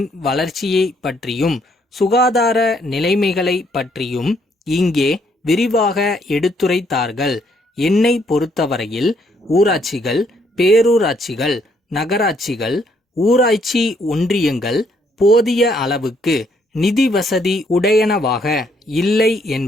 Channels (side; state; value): both; normal; correlation 0.70